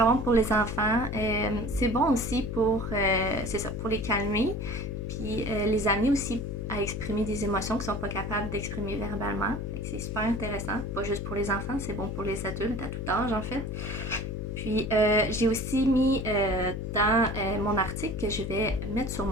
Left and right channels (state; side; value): noise; left; hum, 4 dB below the sound